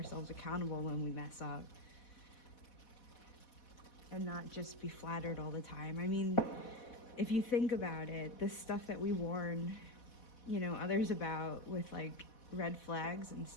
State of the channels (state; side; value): late; right; 4.1 ms